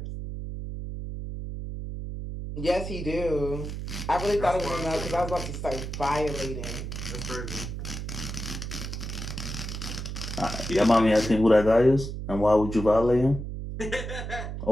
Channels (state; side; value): noise; right; hum, 6 dB below the sound